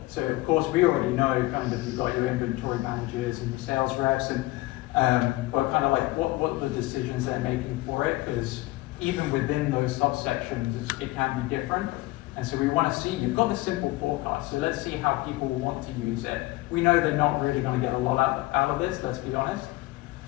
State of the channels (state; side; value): quieter; right; 20.0 dB